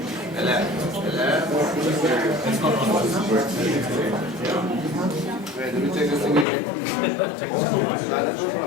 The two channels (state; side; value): drops out; right; at 6.5 s